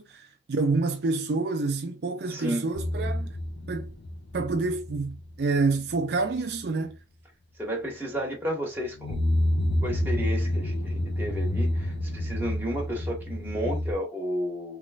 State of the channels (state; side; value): normal; both; correlation 0.68